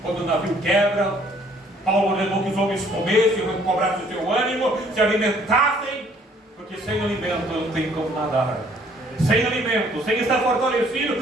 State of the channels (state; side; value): normal; both; correlation 0.61